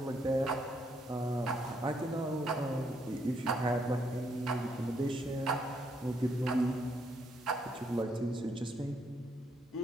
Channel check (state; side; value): normal; both; correlation 0.74